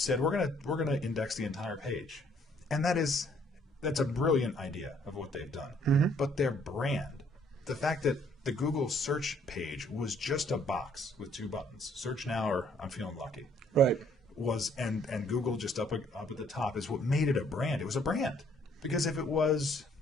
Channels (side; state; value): both; normal; correlation 0.64